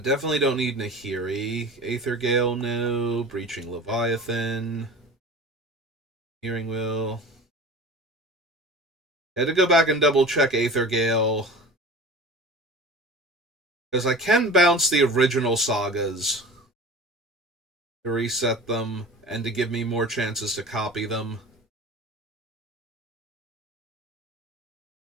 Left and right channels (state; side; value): normal; both; correlation 0.37